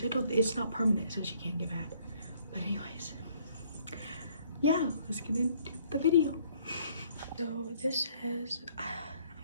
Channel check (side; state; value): both; inverted; correlation -0.63